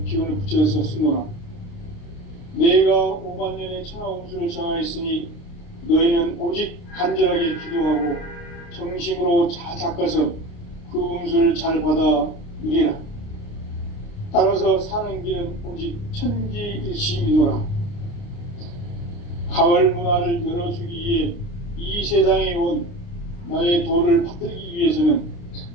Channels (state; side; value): late; right; 29 ms